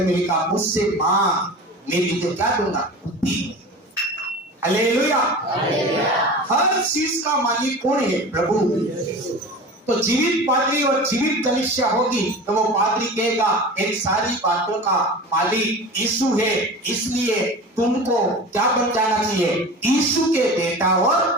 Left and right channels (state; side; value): normal; both; correlation 0.34